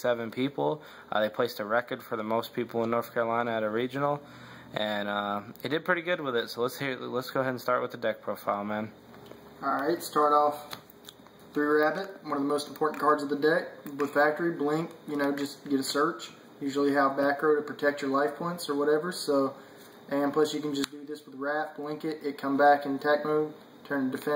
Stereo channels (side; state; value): both; identical; correlation 1.00